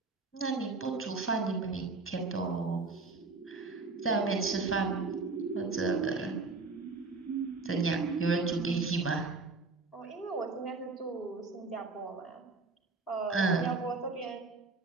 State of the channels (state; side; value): quieter; left; 3.9 dB